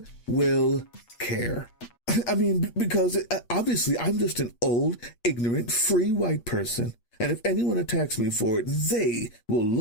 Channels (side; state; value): right; late; 8.6 ms